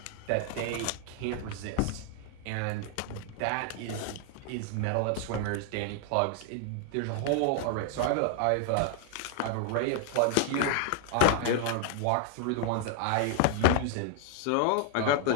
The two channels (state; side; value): different; both; correlation 0.00